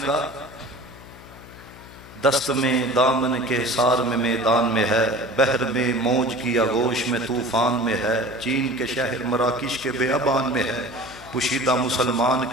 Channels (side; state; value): left; noise; hum, 19 dB below the sound